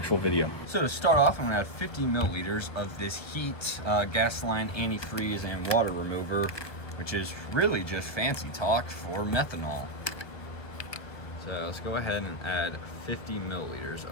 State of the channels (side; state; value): right; late; 1.1 ms